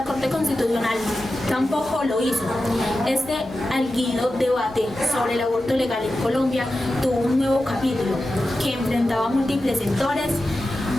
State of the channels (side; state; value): both; normal; correlation 0.92